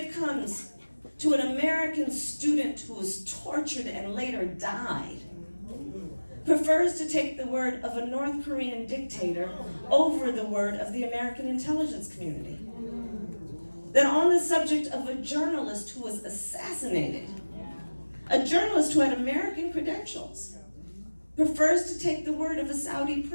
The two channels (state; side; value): inverted; both; correlation -1.00